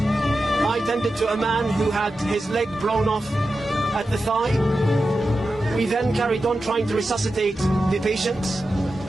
tended to a man who had his leg blown off at the thigh. We then carried on trying to resuscitate the patients.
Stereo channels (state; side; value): normal; both; correlation 0.91